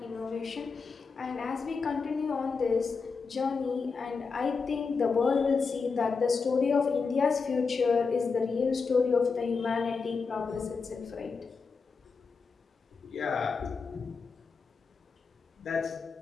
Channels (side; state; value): right; quieter; 4.9 dB